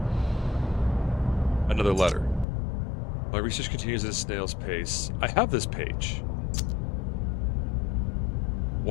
Another letter. My research continues at a snail's pace. I have this page.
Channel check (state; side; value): drops out; right; at 2.5 s